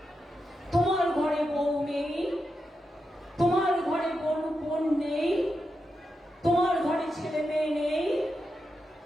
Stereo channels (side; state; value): both; normal; correlation 0.87